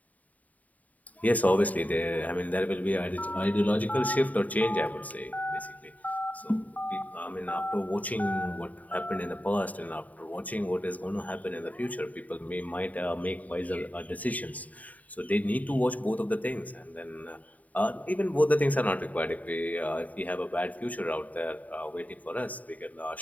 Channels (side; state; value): right; late; 0.073 ms